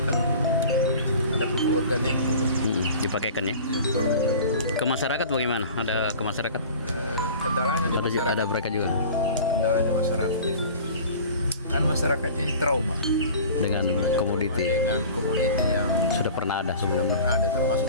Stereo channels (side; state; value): both; inverted; correlation -0.41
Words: kan ada pupuk organik dulu. Dipakaikan ya. Ke masyarakat bagaimana? Ada ke masyarakat? Kendalanya di masyarakat. Ada mereka juga Kendalanya masyarakat ini. Kan masyarakat ini trauma dengan komoditi dengan komoditi yang sudah pernah ada sudah sebelumnya. pernah ada, termasuk